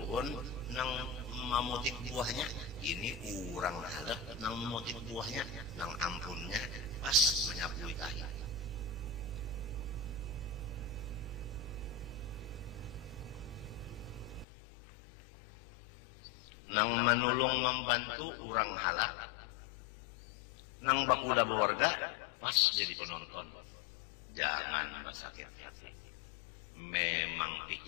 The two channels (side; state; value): right; drops out; at 14.5 s